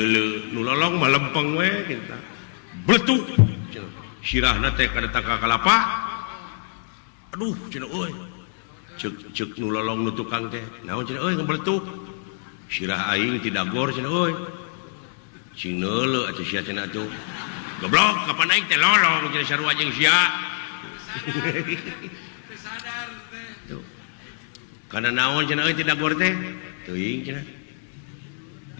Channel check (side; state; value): right; silent; digital silence